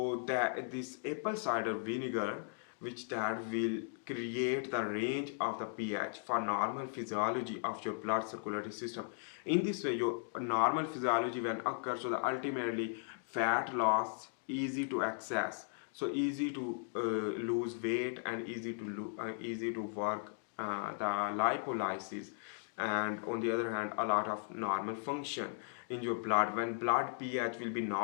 that this apple cider vinegar, which that will create the range of the pH for normal physiology of your blood circulatory system. In this way your normal physiology when occurs, so the ultimately fat loss easy to access, so easy to lose weight and easy to work the lipolysis, and on the other hand a lot of normal function in your blood. When blood pH will be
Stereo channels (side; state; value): right; silent; digital silence